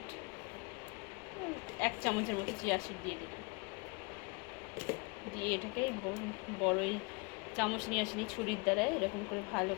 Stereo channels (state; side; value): quieter; right; 29.4 dB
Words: 1 চামচের মতো চিয়া সিড দিয়ে দিলাম। দিয়ে এটাকে বড়ই চামচ নিয়ে আসিনি, ছুরির দ্বারা এরকম করে ভালো